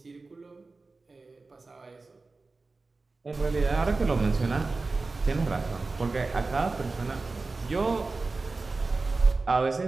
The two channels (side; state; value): left; quieter; 3.7 dB